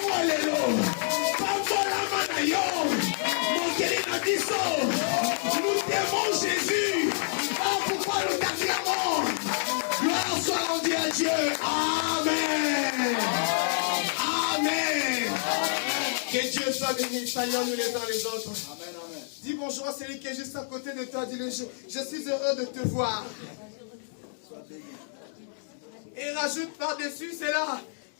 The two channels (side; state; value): right; silent; digital silence